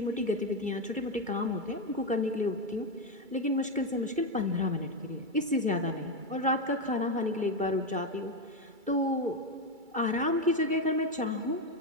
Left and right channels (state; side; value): late; left; 2.3 ms